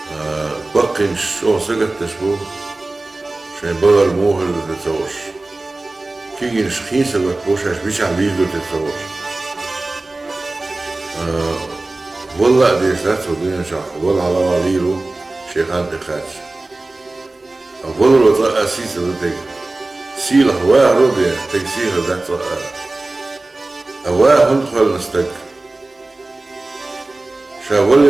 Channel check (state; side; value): quieter; left; 3.0 dB